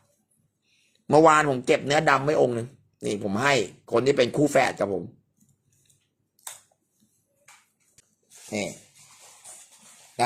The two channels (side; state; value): both; identical; correlation 1.00